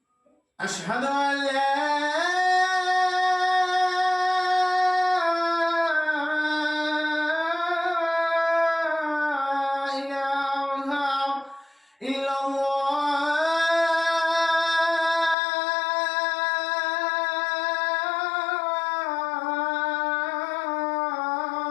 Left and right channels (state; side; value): drops out; right; at 15.4 s